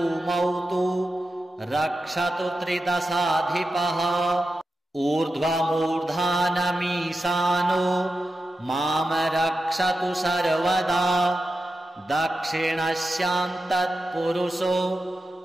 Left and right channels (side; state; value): both; normal; correlation 0.91